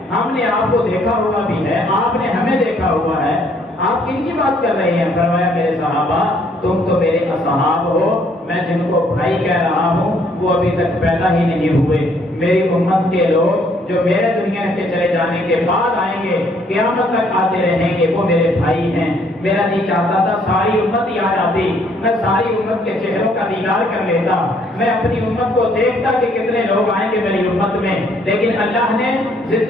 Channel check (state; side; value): normal; both; correlation 0.66